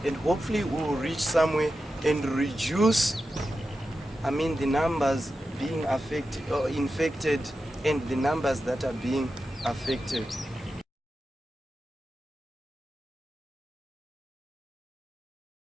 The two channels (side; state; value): both; normal; correlation 0.91